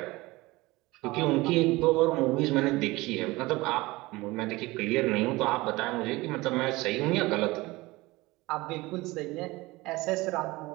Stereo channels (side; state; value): left; quieter; 21.0 dB